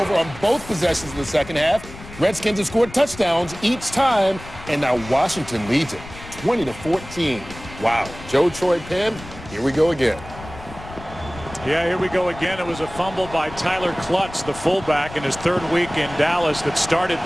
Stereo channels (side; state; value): left; noise; rumble, 15 dB below the sound